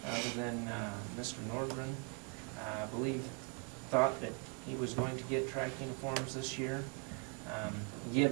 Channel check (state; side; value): quieter; left; 35.7 dB